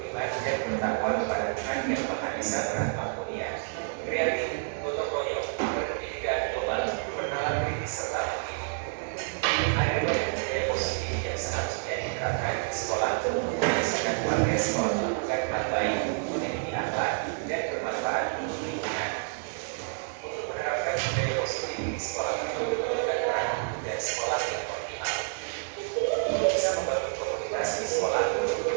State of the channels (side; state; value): left; silent; digital silence